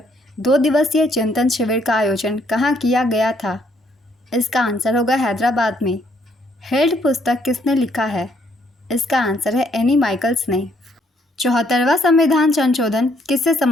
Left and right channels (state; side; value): normal; both; correlation 0.69